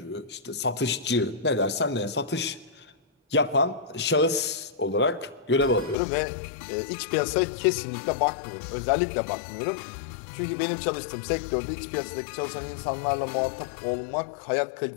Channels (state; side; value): drops out; right; at 6.0 s